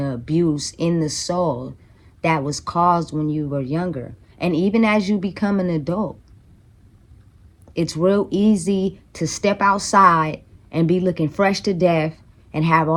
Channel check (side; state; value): both; identical; correlation 1.00